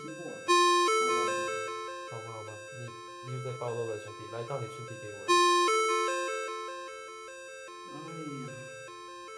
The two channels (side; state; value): both; identical; correlation 1.00